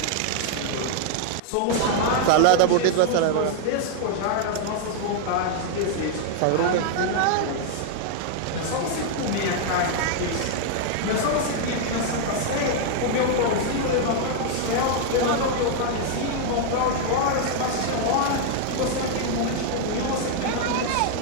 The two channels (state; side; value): different; both; correlation 0.00